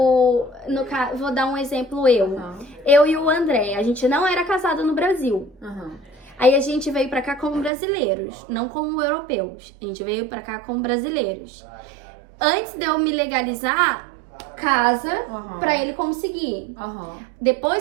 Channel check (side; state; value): left; drops out; at 7.7 s